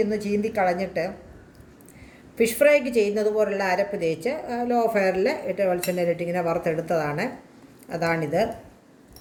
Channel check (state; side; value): identical; both; correlation 1.00